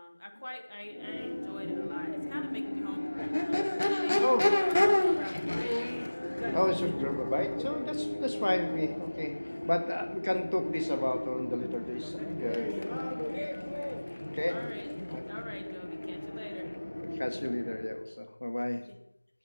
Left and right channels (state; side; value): inverted; both; correlation -1.00